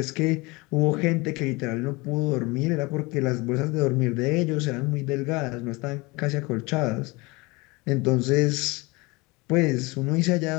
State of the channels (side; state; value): right; quieter; 24.8 dB